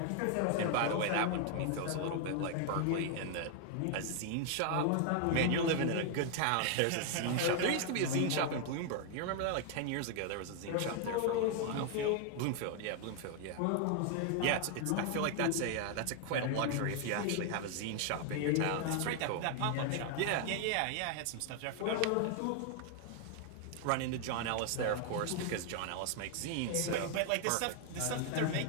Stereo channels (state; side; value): different; both; correlation 0.00